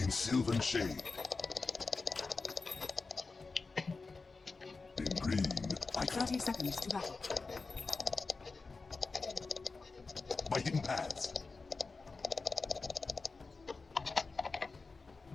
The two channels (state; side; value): quieter; right; 4.1 dB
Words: sylvan shade. In green, I 30 seconds to battle. by hidden paths.